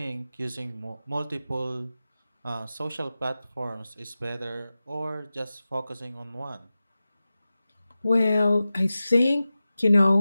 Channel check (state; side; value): inverted; both; correlation -0.94